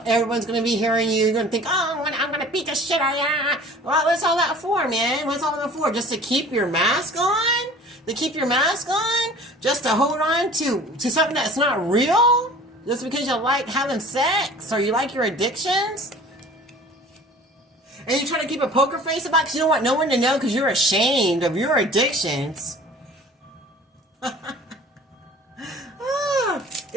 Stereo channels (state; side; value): normal; both; correlation 0.46